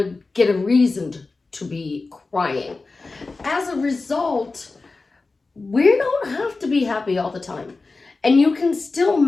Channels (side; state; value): right; quieter; 3.7 dB